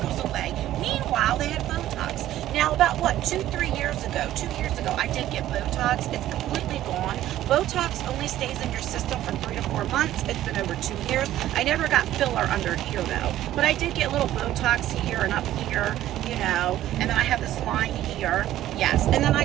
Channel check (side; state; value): left; quieter; 13.4 dB